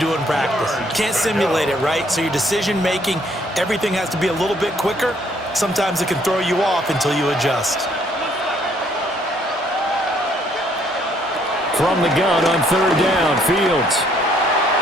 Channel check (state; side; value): normal; both; correlation 0.66